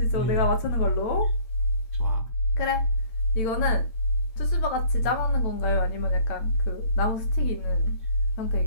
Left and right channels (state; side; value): late; right; 9.0 ms